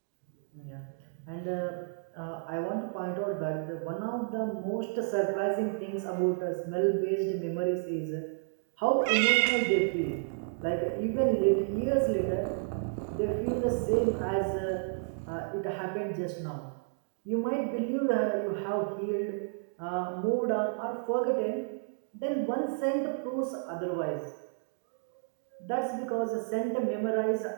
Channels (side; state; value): left; silent; digital silence